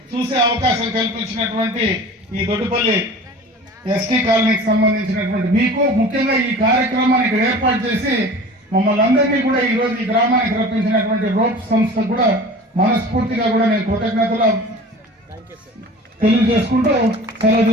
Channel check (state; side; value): normal; both; correlation 0.40